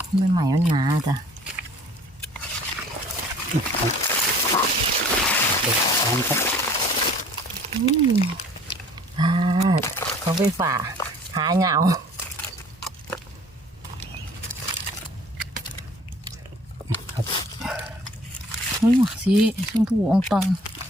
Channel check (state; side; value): normal; both; correlation 0.51